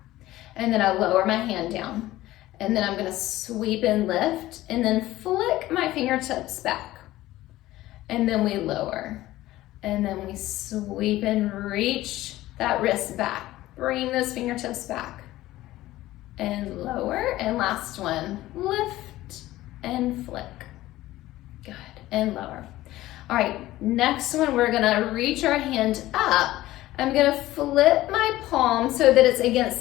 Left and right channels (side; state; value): right; quieter; 16.1 dB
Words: And then I lower my hand down. And then I'm gonna sweep and lift, and then flick my fingertips back. And then we lower. And then we sweep and reach that wrist back. Bring those fingertips back. And lower. And last one, lift and flick. Good, and lower. All right, next one, we're gonna reach our hand up. I'm gonna flip my palm so that it's against